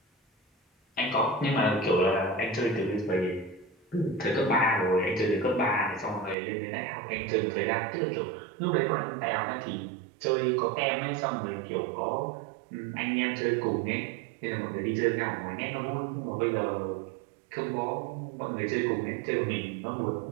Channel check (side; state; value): left; drops out; at 6.4 s